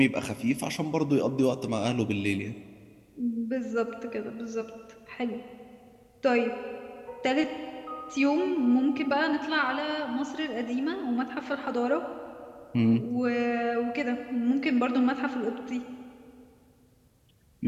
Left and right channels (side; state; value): both; identical; correlation 1.00